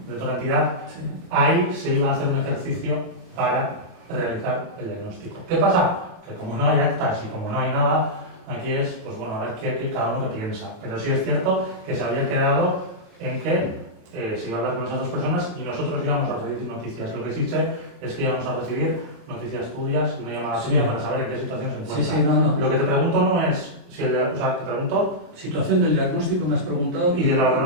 otra entidad, Sí. ahí se iba a hacer un ejercicio para realizar el diagnóstico. ¿Qué pasa? Que como no hay actas y como no hay nada, aquí es, pues bueno, a ver qué cada uno que piensa. Pero sí es cierto que se había quedado en que se iba a hablar con esas dos personas y nosotros íbamos a recibir noticias. Lo que sí sé es que íbamos a recibir noticias tuyas, una llamada tuya para saber en qué situación se encuentra. Sí, no. Lo que te pregunto no es si o sea, te pregunto Situación del diagnóstico me has preguntado. y de la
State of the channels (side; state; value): left; late; 29 ms